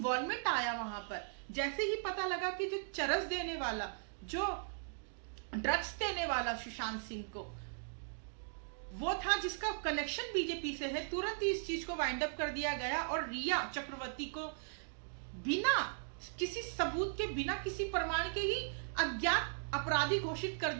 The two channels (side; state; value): left; silent; digital silence